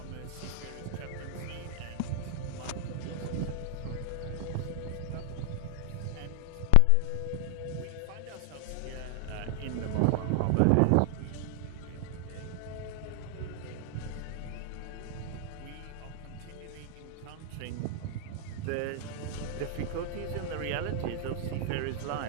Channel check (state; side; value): different; both; correlation 0.00